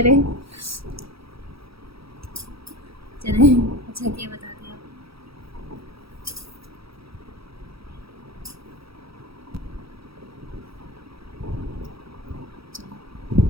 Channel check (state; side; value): late; left; 0.76 ms